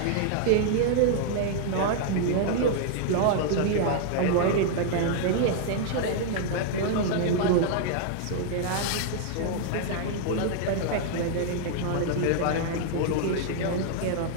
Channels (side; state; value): both; different; correlation 0.00